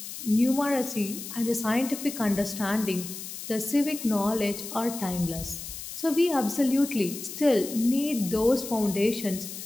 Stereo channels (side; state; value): left; noise; hiss, 10 dB below the sound